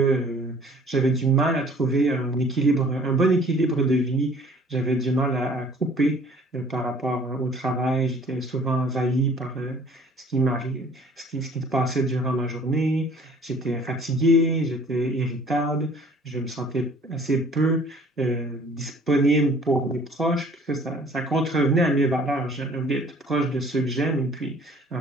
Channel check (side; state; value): both; normal; correlation 0.53